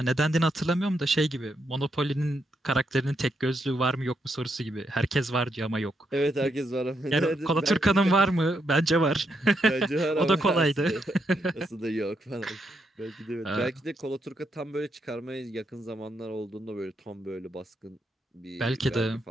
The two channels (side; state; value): both; normal; correlation 0.80